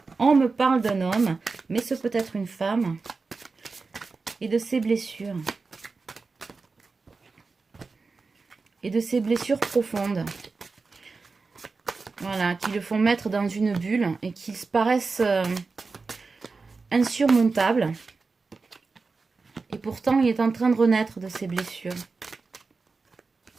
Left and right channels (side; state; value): left; quieter; 4.2 dB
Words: on me parle d'un homme, mais ce peut être une femme et de ses blessures. Et de ses blessures profondes. Voilà, qui le font mettre dans une bulle et qui paraissent insurmontables. Et pourtant, il est en train de renaître de ses blessures.